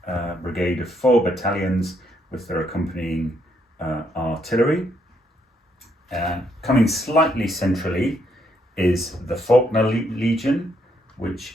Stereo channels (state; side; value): normal; both; correlation 0.74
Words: brigade of 4 battalions with their accompanying artillery. Coming slightly centrally is the Faulkner Legion,